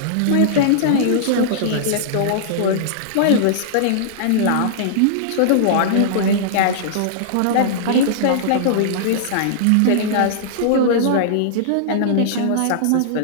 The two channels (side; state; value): both; different; correlation -0.02